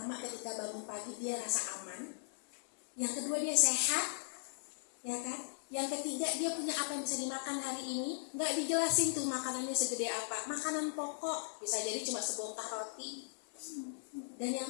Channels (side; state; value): right; silent; 52 dB below the other